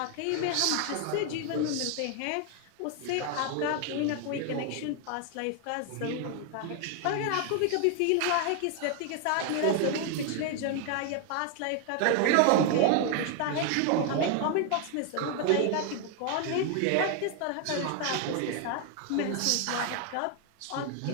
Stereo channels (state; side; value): different; both; correlation 0.00